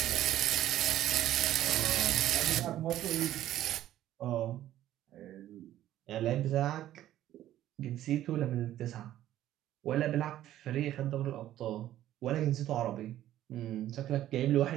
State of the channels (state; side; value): quieter; left; 13.0 dB